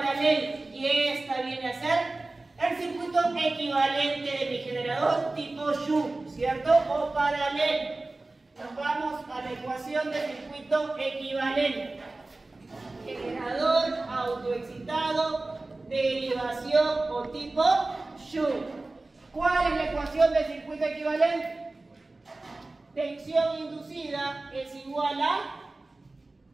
Y esta viene a ser el circuito equivalente de mi generador tipo Shunt, ¿cierto? O paralelo. Nos vamos a la ecuación de circuito equivalente. Generador autoexcitado, derivación o tipo Shunt. ¿Cuál es la ecuación del circuito equivalente? Tensión inducida es igual a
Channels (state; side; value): quieter; left; 3.1 dB